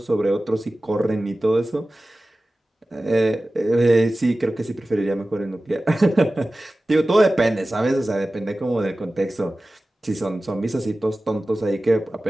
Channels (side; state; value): both; normal; correlation 0.96